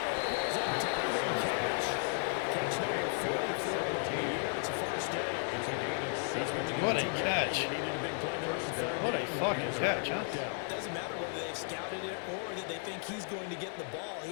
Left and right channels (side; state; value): right; silent; 55 dB below the other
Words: Catch number 44 of the year. It's a first down. What a catch. What a fucking catch, huh? Doesn't matter whether they've scouted it or that they think he's going to get the ball.